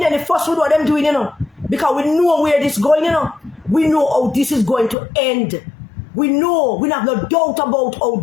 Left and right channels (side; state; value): right; drops out; at 5.0 s